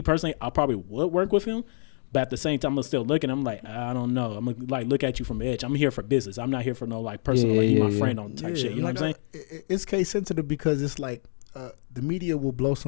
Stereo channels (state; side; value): silent; right; digital silence